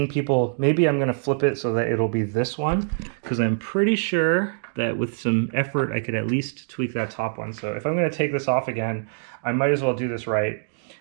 people, maybe I'm going to flip it so that it'll be this one, because I'm pretty sure that with some effort I could at least tweak that top one. So if I'm going to take this off again, I might as well do this right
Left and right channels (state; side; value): silent; left; digital silence